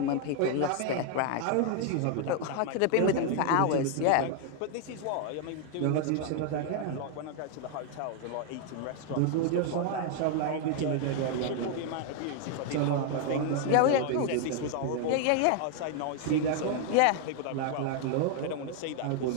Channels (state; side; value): different; both; correlation 0.00